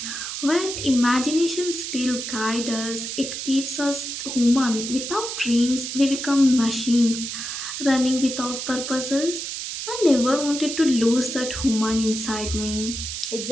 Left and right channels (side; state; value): right; noise; hiss, 5 dB below the sound